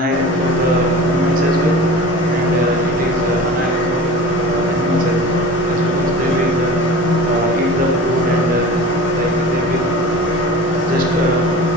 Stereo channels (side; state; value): both; normal; correlation 0.37